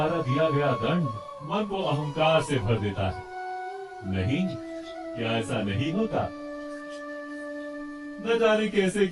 दिया गया दंड मन को अहंकार से भर देता है। नहीं, क्या ऐसा नहीं होता? न जाने कैसे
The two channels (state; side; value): identical; both; correlation 1.00